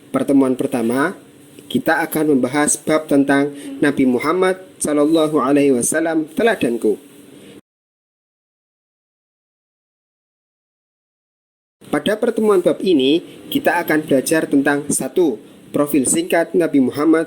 pertemuan pertama kita akan membahas bab tentang Nabi Muhammad SAW teladanku. Pada pertemuan bab ini, kita akan belajar tentang 1. Profil singkat Nabi Muhammad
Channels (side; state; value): both; identical; correlation 1.00